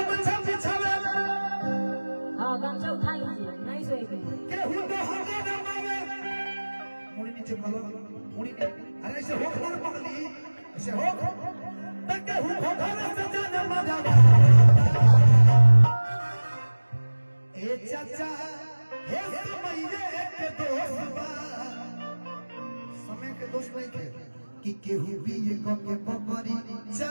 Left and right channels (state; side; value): inverted; both; correlation -1.00